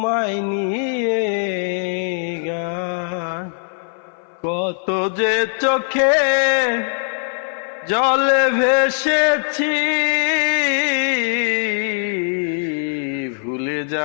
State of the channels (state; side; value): silent; right; 59 dB below the other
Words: নিয়ে গান। কত যে চোখে জলে ভেসেছি, ভুলে